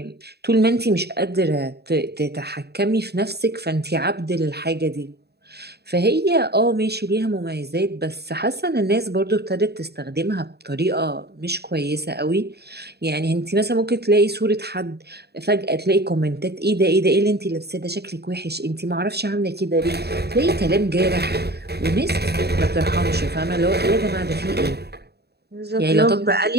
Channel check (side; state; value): left; late; 0.47 ms